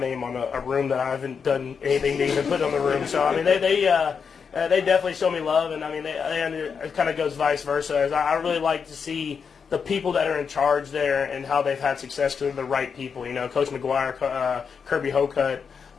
on a room that I haven't done anything to even put on the room. So I mean, they definitely show me love, and I mean, it kind of goes vice versa. I really like to see the people that are in charge there and how they've had success because they're the right people. Coach McGuire, Kirby Hocutt,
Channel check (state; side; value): quieter; right; 6.2 dB